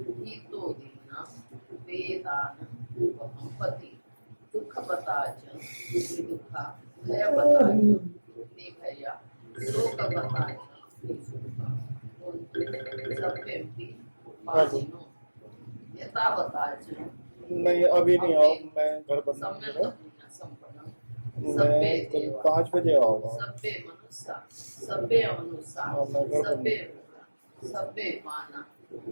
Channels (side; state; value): both; inverted; correlation -1.00